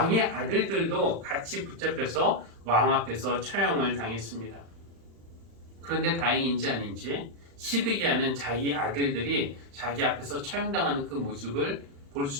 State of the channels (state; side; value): late; left; 35 ms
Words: 아들들도 같이 붙잡혀서 왕 앞에서 처형을 당했습니다. 그런데 다행인지 아닌지 시드기야는 자기 아들들이 자기 앞에서 처형당하는 그 모습을 볼